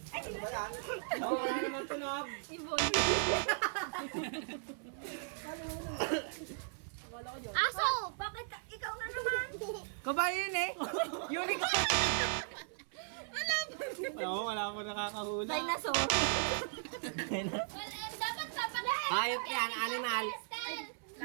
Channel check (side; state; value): left; silent; 53 dB below the other